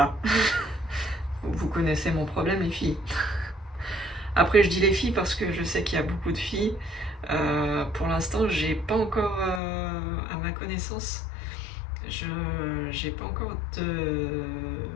Vous connaissez mon problème, les filles. Après, je dis les filles parce que je sais qu'il y a beaucoup de filles. Pour l'instant, j'ai pas encore, à ma connaissance, j'ai pas encore de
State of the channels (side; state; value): right; drops out; at 9.6 s